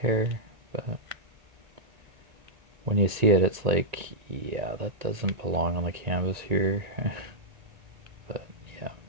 but when you see it, it's like, yeah, that doesn't belong on the canvas here. But yeah,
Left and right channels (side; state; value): left; late; 1.9 ms